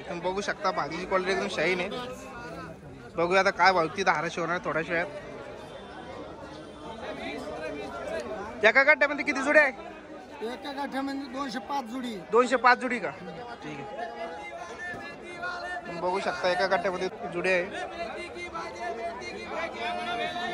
तुम्ही बघू शकता भाजीची क्वालिटी एकदम शाईन आहे. बघूया आता काय भाव ती 1200 होणार थोड्या वेळात. एका गड्ड्यामध्ये किती जुडे आहे? एका गाठ्यामध्ये 205 जुडी. 205 जुडी का? ठीक आहे. तुम्ही बघू शकता एका गड्ड्यामध्ये जुडे आहे.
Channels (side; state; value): both; identical; correlation 1.00